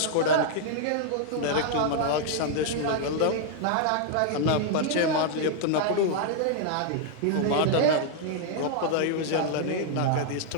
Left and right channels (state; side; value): different; both; correlation 0.00